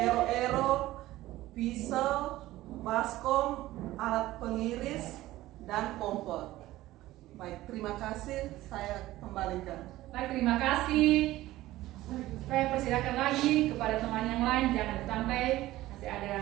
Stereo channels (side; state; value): left; quieter; 16.4 dB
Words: pisau, baskom, alat pengiris, dan kompor. Baik, terima kasih. Saya kembalikan. Baik, terima kasih. Saya persilakan lagi kepada teman yang lain, jangan sampai masih